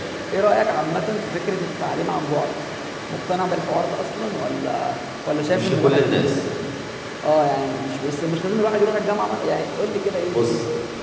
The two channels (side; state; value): both; identical; correlation 1.00